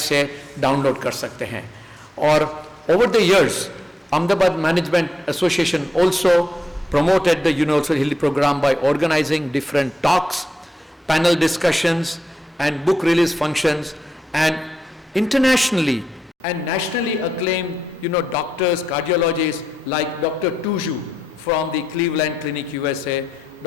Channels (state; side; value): normal; both; correlation 0.84